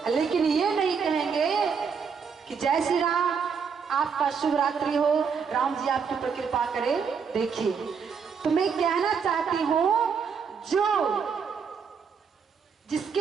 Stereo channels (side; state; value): left; quieter; 6.2 dB